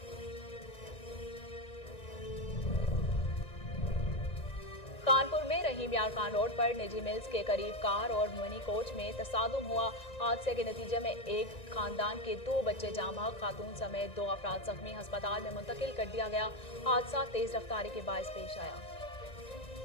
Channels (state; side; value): late; right; 1.9 ms